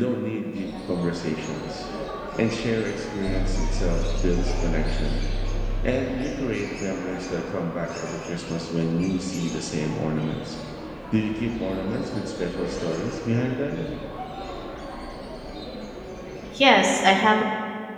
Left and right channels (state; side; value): identical; both; correlation 1.00